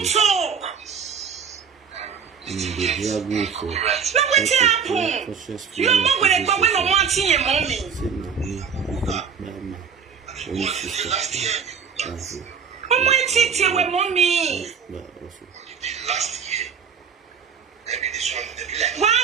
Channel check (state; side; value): quieter; left; 6.6 dB